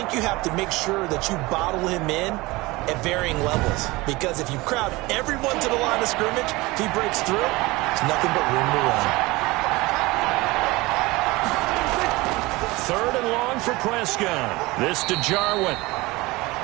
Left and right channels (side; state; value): left; quieter; 21.8 dB